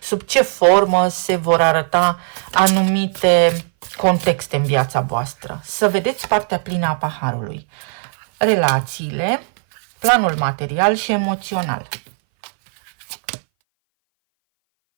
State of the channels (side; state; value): left; silent; 61 dB below the other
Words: sub ce formă se vor arăta anumite contexte în viața voastră. Să vedeți partea plină a paharului. Relațiile, planul material și emoțional.